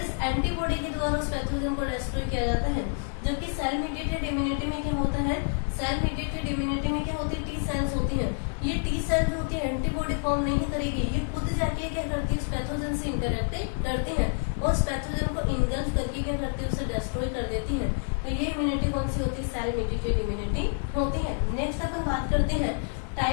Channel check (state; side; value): silent; right; 59 dB below the other